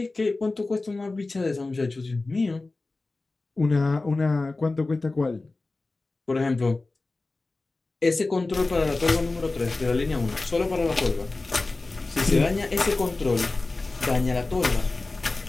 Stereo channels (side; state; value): right; quieter; 3.3 dB